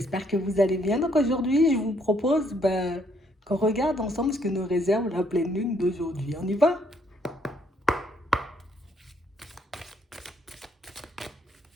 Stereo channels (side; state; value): both; normal; correlation 0.69